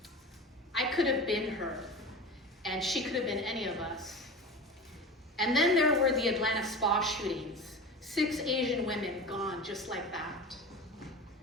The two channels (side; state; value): both; normal; correlation 0.31